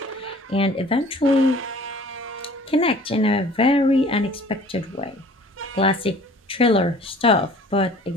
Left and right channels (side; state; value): both; normal; correlation 0.49